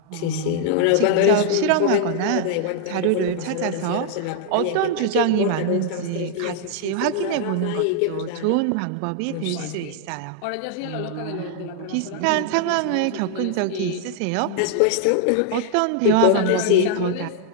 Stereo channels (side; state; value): both; different; correlation 0.00